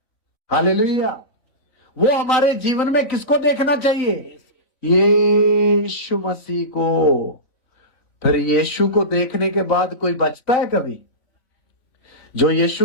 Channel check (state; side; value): late; right; 3.9 ms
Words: हालेलुया। वो हमारे जीवन में किसको देखना चाहिए? यीशु मसीह को। फिर यीशु को देखने के बाद कोई बचता है कभी? जो